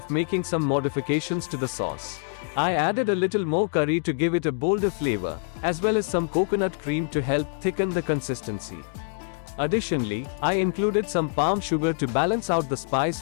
making some modifications to the sauce. I added a little more curry to give it a bolder flavor, as well as some coconut cream to help thicken the consistency. Additionally, I included some palm sugar to balance out the spice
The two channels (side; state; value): right; silent; digital silence